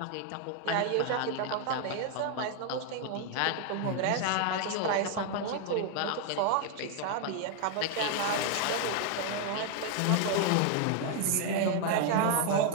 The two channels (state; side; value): different; both; correlation 0.00